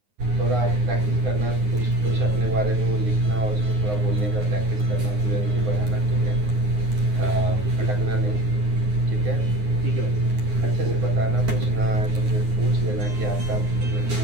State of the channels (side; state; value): left; late; 9.6 ms